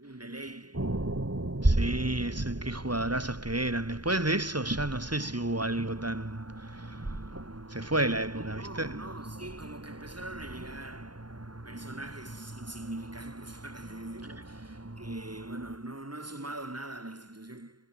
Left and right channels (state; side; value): late; left; 0.71 ms